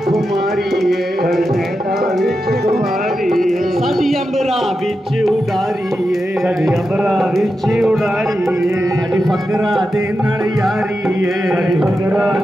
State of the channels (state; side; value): normal; both; correlation 0.89